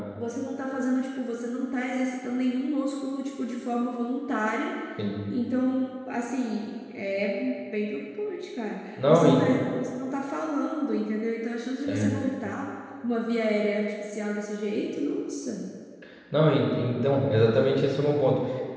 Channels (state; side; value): identical; both; correlation 1.00